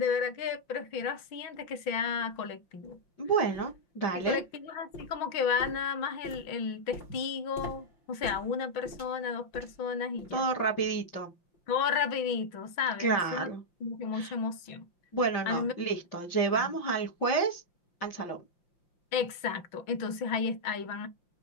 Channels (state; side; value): late; right; 5.7 ms